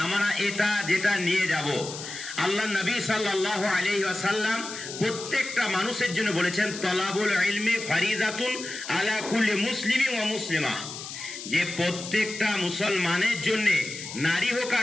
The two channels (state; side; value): noise; left; hiss, 10 dB below the sound